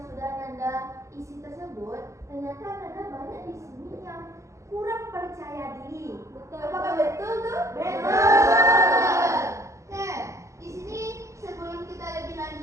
sudah Nanda isi tersebut, ternyata Nanda banyak di sini yang kurang percaya diri. Betul. Apakah betul tuh? Betul. Nah, di sini sebelum kita lebih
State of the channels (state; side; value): late; left; 0.15 ms